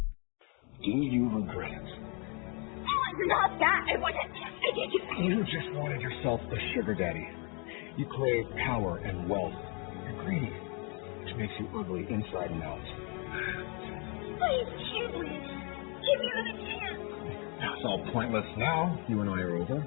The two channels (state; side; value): quieter; right; 34.5 dB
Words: Do you regret it? Oh, it's not that. I wasn't. You just wanted yourself a sugar daddy. You crave power and wealth. You're greedy, which makes you ugly inside and out. Please, Kingsley, give me another chance. It's all pointless now. You and I are over.